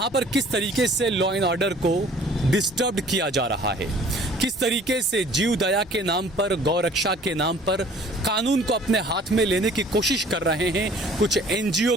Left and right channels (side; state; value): both; normal; correlation 0.52